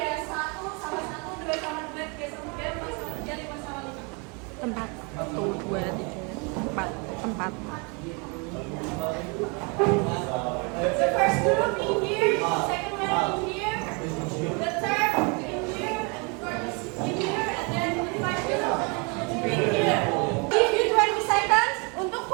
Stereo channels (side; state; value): left; quieter; 32.5 dB